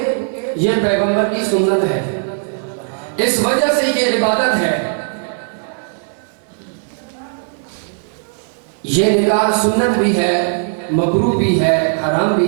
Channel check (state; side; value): silent; left; 68 dB below the other